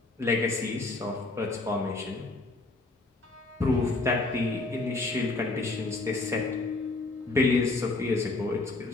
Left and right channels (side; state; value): right; quieter; 3.2 dB